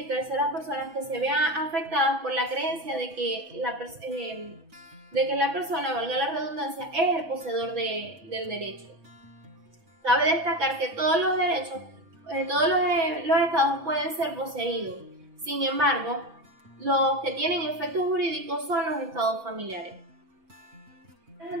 terceras personas que se vean afectadas por la creencia de que la persona, valga la redundancia, es el poseedor del derecho. Cabe destacar que todos los derechos, los estados pueden ser poseídos. Sin embargo, los que tienen efectos jurídicos son los estados familiares.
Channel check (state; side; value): late; left; 6.1 ms